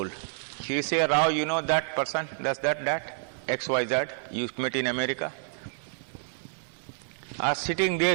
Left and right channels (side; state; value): left; silent; digital silence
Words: He say, Rao, you know that person, does that, XYZ, you met in America? Sitting there,